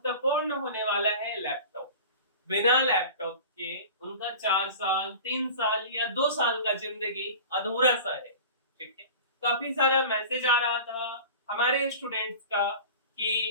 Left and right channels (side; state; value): both; inverted; correlation -0.37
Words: होने वाला है लैपटॉप। बिना लैपटॉप के उनका 4 साल, 3 साल या 2 साल का जिंदगी अधूरा सा है। ठीक है, काफी सारा मैसेज आ रहा था हमारे स्टूडेंट्स का